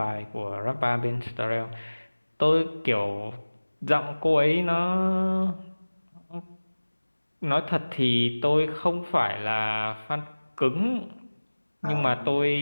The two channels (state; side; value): inverted; both; correlation -1.00